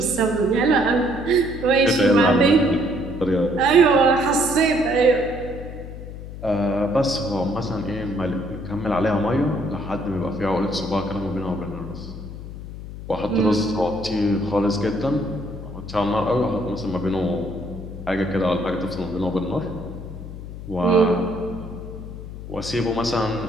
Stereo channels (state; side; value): noise; left; hum, 11 dB below the sound